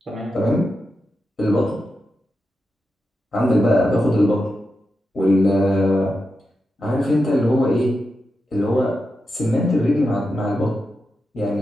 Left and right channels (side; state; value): both; normal; correlation 0.89